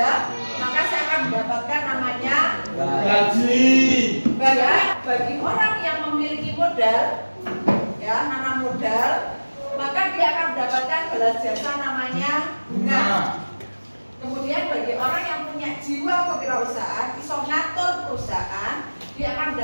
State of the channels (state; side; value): inverted; both; correlation -1.00